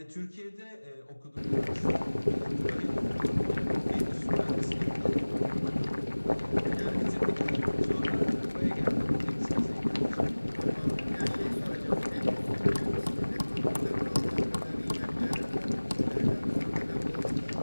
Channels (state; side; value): inverted; both; correlation -1.00